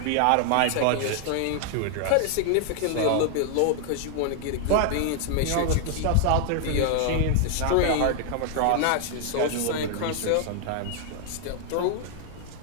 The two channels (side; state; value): both; different; correlation 0.00